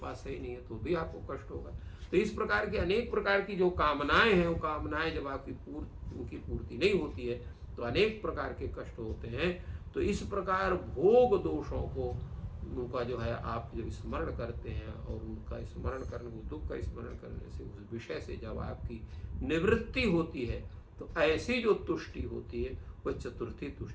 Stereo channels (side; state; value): both; identical; correlation 1.00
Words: सही नहीं है, तो भी आपको कष्ट होगा। तो इस प्रकार की अनेक प्रकार की जो कामनाएं हैं, वो कामनाएं जब आपकी उनकी पूर्ति नहीं होती है, तो अनेक प्रकार के कष्ट होते हैं। तो इस प्रकार भोग दोषों को, उनका जो है आप जब स्मरण करते हैं, और उनका स्मरण करने, दुख का स्मरण करने से, उस विषय से जब आपकी निवृत्ति होती है, तो ऐसी जो तुष्टि होती है, वह चतुर्थी